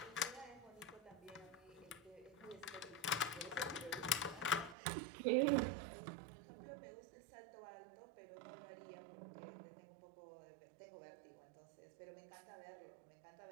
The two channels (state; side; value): drops out; left; at 4.8 s